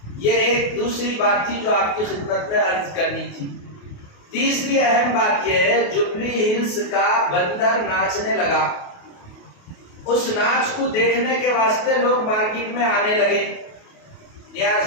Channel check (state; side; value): late; right; 28 ms